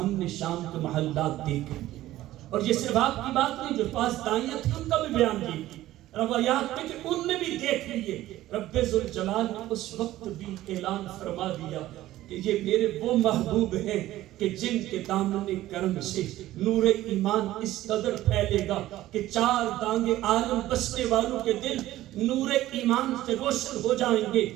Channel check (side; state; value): left; quieter; 15.1 dB